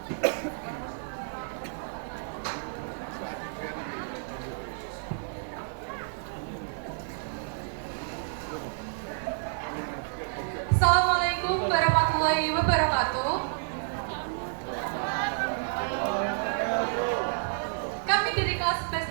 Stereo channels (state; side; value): silent; left; 58 dB below the other